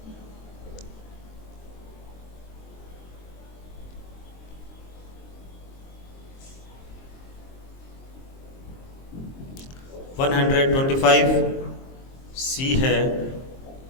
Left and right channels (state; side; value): late; right; 23 ms